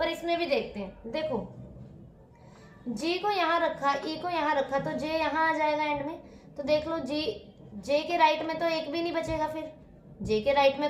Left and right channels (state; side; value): identical; both; correlation 1.00